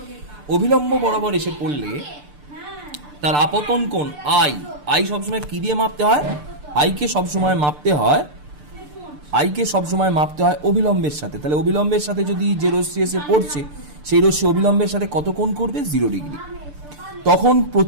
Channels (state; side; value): late; left; 6.8 ms